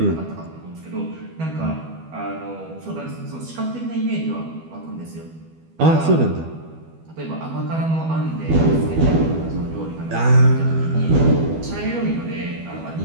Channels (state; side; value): late; left; 12 ms